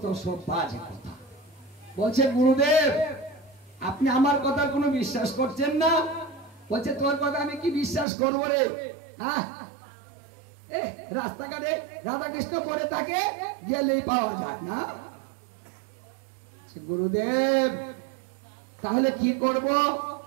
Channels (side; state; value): left; drops out; at 8.1 s